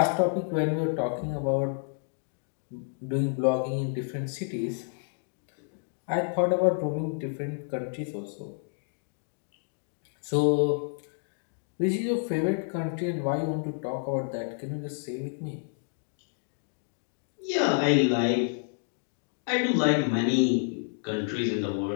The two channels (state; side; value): silent; right; digital silence